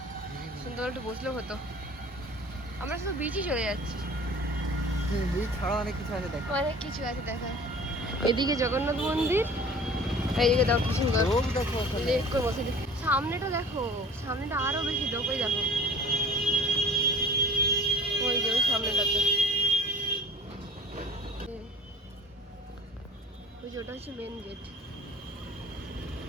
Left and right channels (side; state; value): both; normal; correlation 0.44